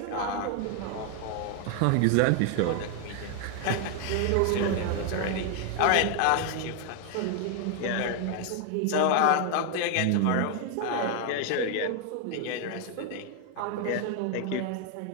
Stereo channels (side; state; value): both; different; correlation 0.00